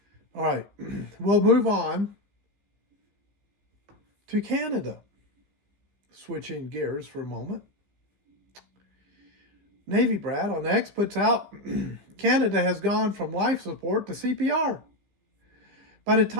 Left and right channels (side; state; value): left; late; 15 ms